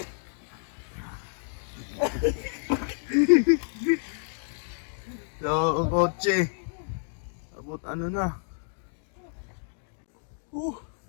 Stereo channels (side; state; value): right; silent; digital silence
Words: So, ang kotse abot na.